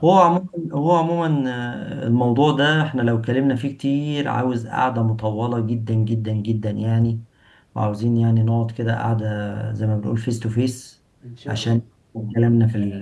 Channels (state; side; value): identical; both; correlation 1.00